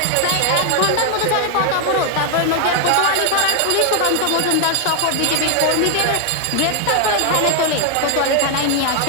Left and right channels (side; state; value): both; different; correlation 0.00